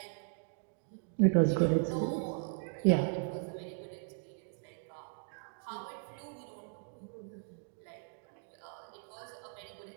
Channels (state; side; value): silent; left; digital silence